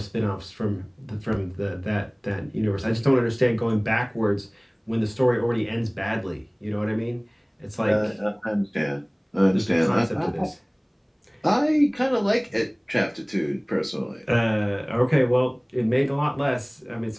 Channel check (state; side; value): identical; both; correlation 1.00